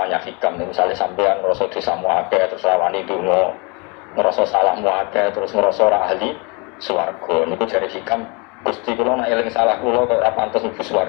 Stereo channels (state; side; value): quieter; right; 30.6 dB